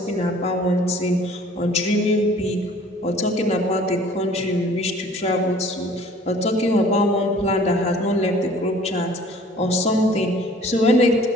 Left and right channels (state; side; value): normal; both; correlation 0.52